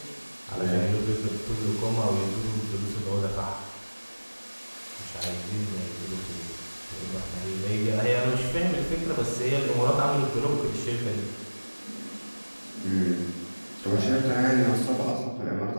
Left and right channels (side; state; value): both; inverted; correlation -1.00